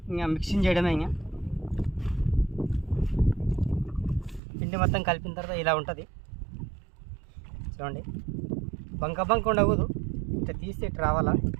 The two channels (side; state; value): left; drops out; at 4.4 s